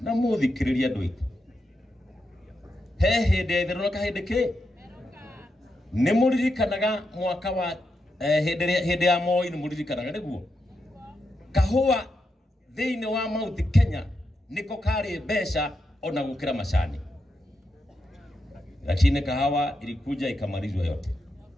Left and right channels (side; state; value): both; normal; correlation 0.85